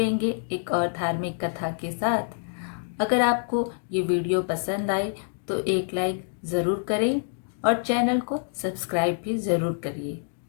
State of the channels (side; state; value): right; silent; digital silence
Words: एक और धार्मिक कथा के साथ। अगर आपको ये वीडियो पसंद आए तो एक लाइक ज़रूर करें और चैनल को सब्सक्राइब भी ज़रूर करिए।